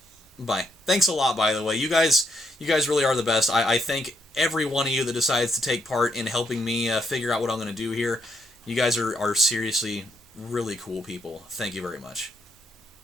Bye. Thanks a lot, by the way. You guys really are the best. I thank every one of you that decides to take part in helping me figure out what I'm gonna do here. You guys are seriously really cool people. Thank you very much.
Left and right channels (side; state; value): both; normal; correlation 0.77